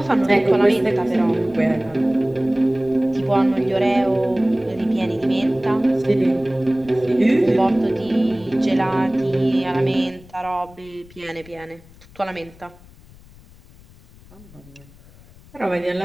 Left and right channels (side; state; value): left; noise; rumble, 23 dB below the sound